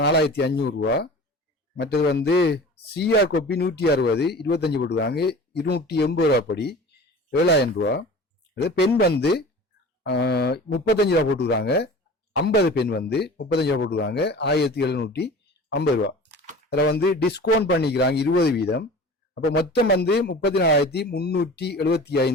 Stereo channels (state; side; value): normal; both; correlation 0.39